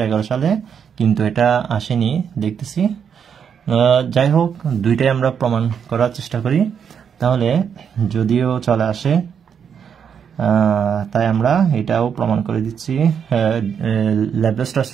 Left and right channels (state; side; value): quieter; left; 7.4 dB